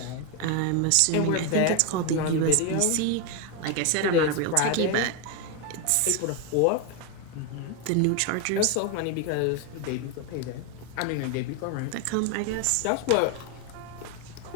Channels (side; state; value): both; different; correlation 0.01